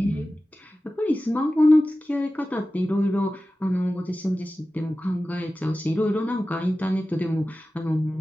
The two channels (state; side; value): normal; both; correlation 0.95